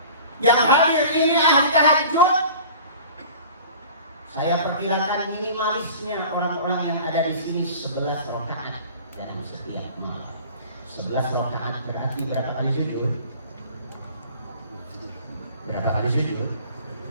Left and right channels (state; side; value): inverted; both; correlation -0.43